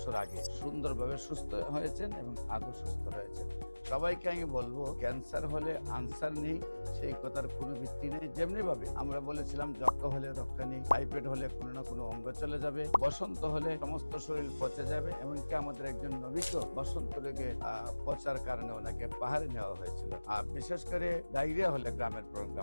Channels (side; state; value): both; inverted; correlation -1.00